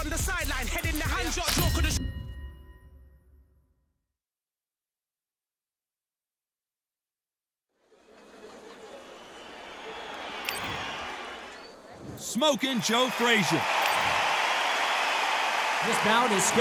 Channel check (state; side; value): identical; both; correlation 1.00